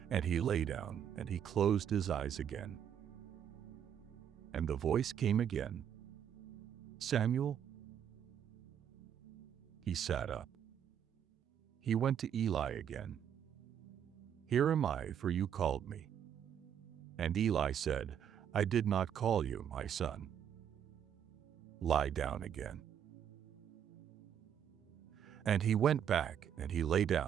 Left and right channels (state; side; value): quieter; left; 9.0 dB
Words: and he lay down, and he closed his eyes again. And the voice came again, "Samuel?" He sat up. He went to Eli again. "Here am I, for you called me." And Eli said, "I did not call you, my son. Lie down again." And he went back, and he lay